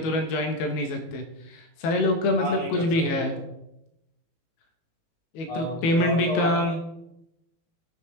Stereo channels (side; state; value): right; late; 18 ms